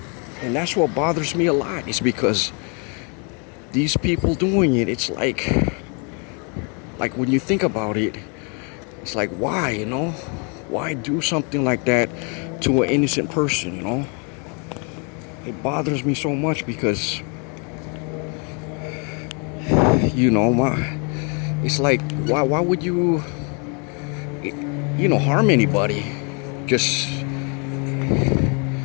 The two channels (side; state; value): right; quieter; 35.8 dB